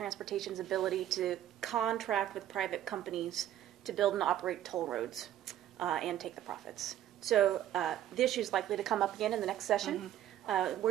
ability to contract with private companies to build and operate toll roads and take the profits. So the issue is likely to come up again in the next session.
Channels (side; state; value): left; quieter; 11.9 dB